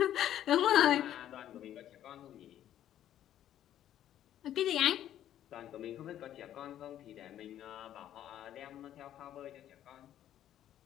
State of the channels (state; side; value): quieter; right; 11.5 dB